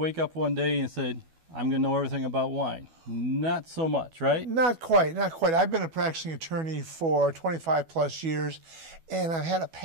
up one day and say, I'm going to know everything about wine. Not so much, right? Not quite, not quite. I've been a practicing attorney for 25 plus years, and I've had a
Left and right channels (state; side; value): late; left; 12 ms